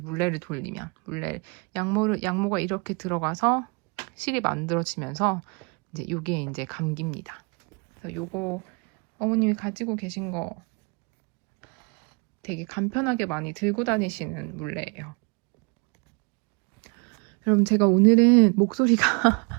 돌리면 양모가 이렇게 들어가서 실이 만들어지면서 이제 요게 이제 감깁니다. 그래서 요거 어머님이 가지고 계신 거 되게 간편하게 많이 들고 다니시는 물레예요. 여러분, 제가 오늘은 목소리가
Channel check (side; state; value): left; quieter; 32.8 dB